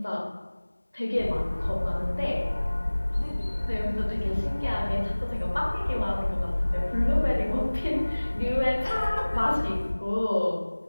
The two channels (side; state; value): both; inverted; correlation -1.00